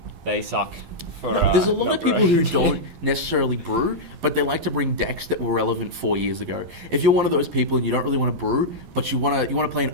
they suck. There's a lot of people who don't necessarily brew, but they like to bring decks that were relevant 4 years ago. If you're one of those people and you don't really want to brew, but you want to play an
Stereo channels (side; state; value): left; late; 12 ms